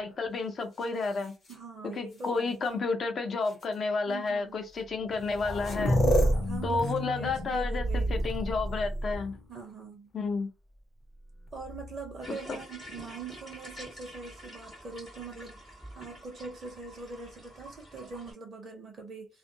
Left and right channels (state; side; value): normal; both; correlation 0.81